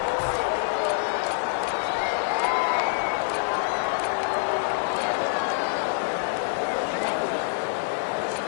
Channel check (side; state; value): right; silent; 61 dB below the other